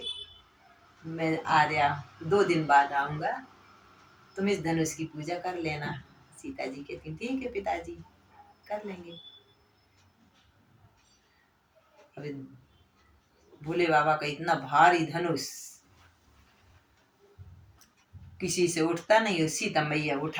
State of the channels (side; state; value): both; identical; correlation 1.00